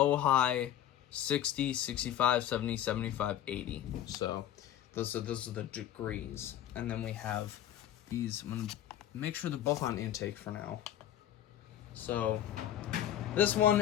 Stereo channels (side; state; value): right; quieter; 11.5 dB